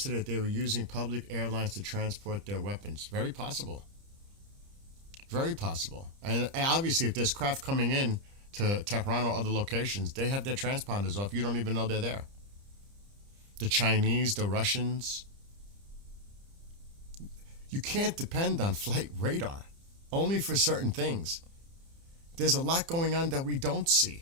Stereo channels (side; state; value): left; late; 30 ms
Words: that they were using public airlines to transport their weapons. Very possible. Very possible. And obviously, if there's craft coming in to Tehran or other locations, they have their transponders off. You don't even know they're there. The Chinese, the Russians. You can't depend on flight radar, only for certain things. There's a lot going on that we don't